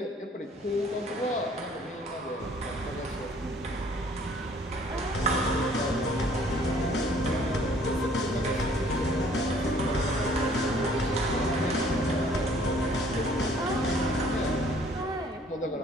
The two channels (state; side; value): normal; both; correlation 0.58